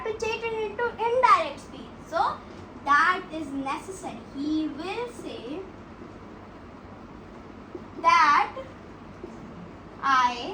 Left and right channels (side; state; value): both; identical; correlation 1.00